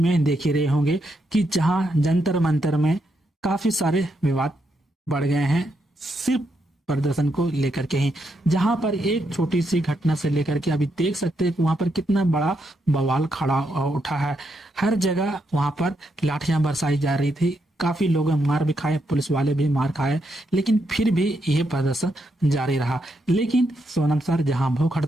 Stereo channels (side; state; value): both; normal; correlation 0.80